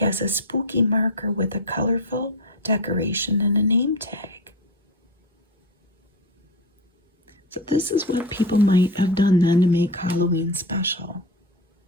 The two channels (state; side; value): normal; both; correlation 0.21